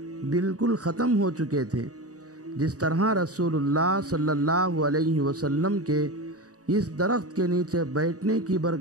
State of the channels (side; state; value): left; late; 0.66 ms